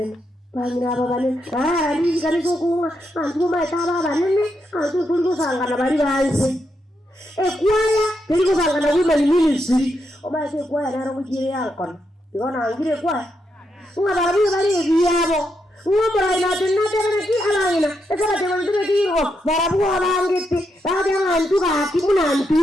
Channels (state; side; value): normal; both; correlation 0.82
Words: Bangina baba nene. Ni kaniso kunga. Antu maita baba nene. Antu tuliko sangana bali banse. Ekwaya teriko sangana women ministry. Omaise ekwaya naro mukire yankona. Igona angire kwaya. Unga barabu bali ebiyabo. Umura ina tinatera ki alangina. Ekara tewa ndure kiro. Barabu abangete. Bade antu ka kimuna